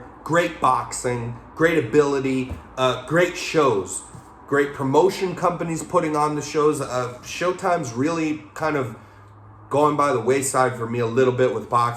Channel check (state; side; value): identical; both; correlation 1.00